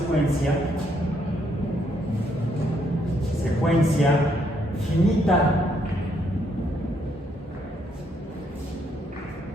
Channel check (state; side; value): normal; both; correlation 0.73